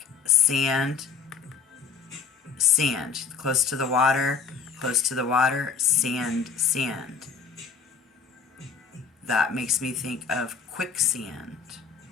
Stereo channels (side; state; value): right; quieter; 5.8 dB